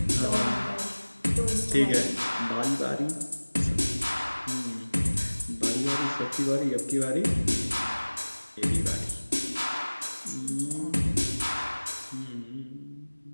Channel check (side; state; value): both; inverted; correlation -1.00